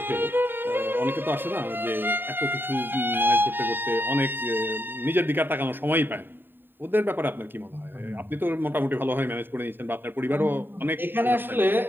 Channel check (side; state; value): left; late; 0.095 ms